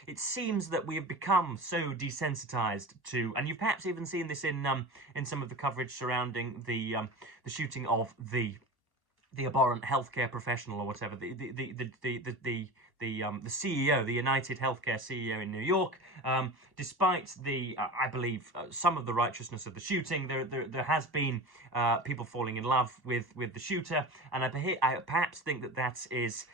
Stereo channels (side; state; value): left; late; 1.1 ms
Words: it seems that we have become so desensitized to, and you've perhaps even seen this in some of the coverage surrounding the shooting of the abhorrent healthcare professional, or whatever, the CEO, the United Healthcare CEO in New York. Despite I believe, some of the righteousness of the shooting, there has been people falling in love with the shooter, and I perhaps think that is